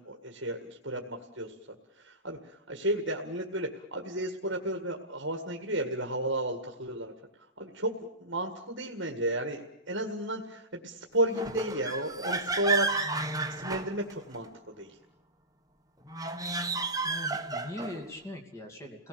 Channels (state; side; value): normal; both; correlation -0.20